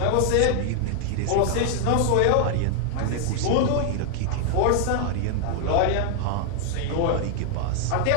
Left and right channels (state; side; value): different; both; correlation 0.00